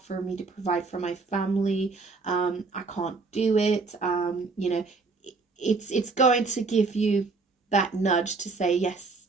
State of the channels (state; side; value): quieter; left; 4.1 dB